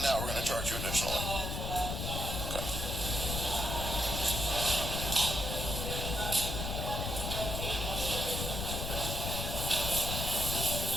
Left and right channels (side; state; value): left; noise; rumble, 3 dB below the sound